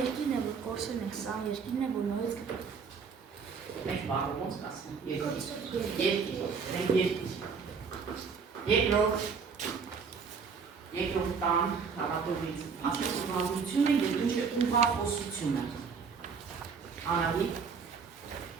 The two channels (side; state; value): left; quieter; 5.7 dB